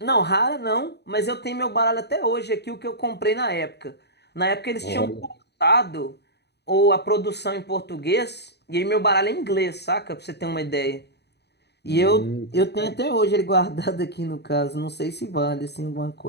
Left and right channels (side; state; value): right; late; 0.49 ms